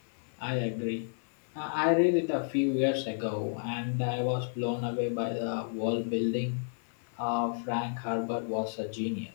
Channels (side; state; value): right; silent; 57 dB below the other